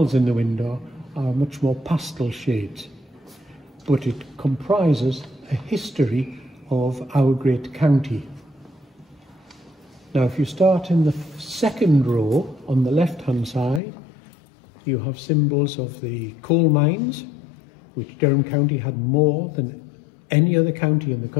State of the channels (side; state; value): right; drops out; at 13.8 s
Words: in the window are much more pastel shades, but it comprises a history of our great county. Now, if you start in the second row on the left-hand side, you have symbols of the coal mines, which Durham County had more than any other county in the